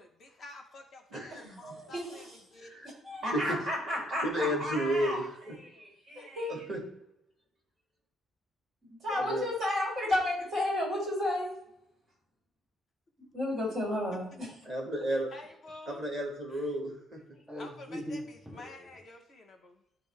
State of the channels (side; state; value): both; normal; correlation 0.71